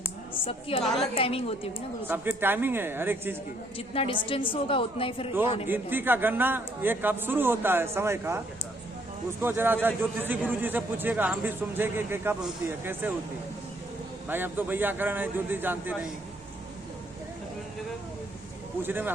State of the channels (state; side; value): normal; both; correlation 0.67